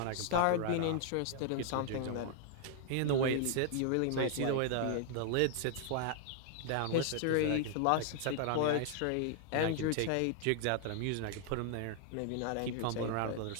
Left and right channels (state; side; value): different; both; correlation 0.00